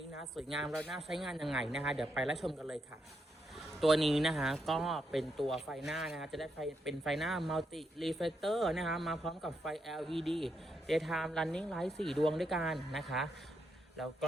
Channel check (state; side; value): normal; both; correlation 0.80